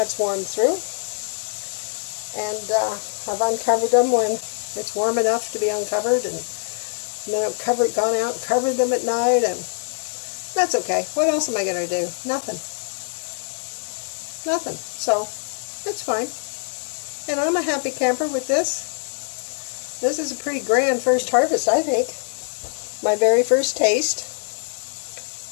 warmed through. And I've uncovered them when it's warm enough to be uncovered. And then I've gone out and covered them at night. And that's okay. What else am I going to do? Nothing. Nothing. So, it's fine. And I'm a happy camper with this. This is a pretty grand first harvest, I think. My very first taste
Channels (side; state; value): right; silent; 63 dB below the other